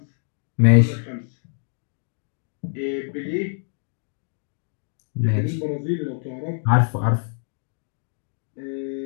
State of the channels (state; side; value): silent; right; 62 dB below the other